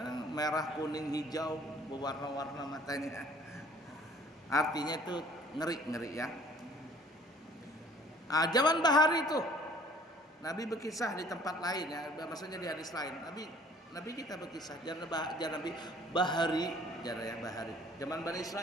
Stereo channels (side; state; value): both; normal; correlation 0.54